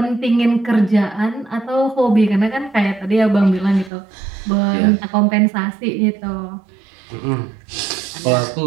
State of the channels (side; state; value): left; drops out; at 3.9 s